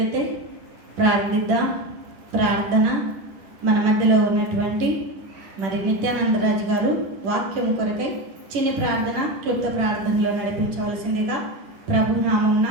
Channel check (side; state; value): left; late; 10 ms